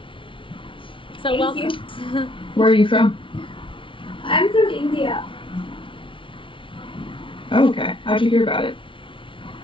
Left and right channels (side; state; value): right; late; 0.25 ms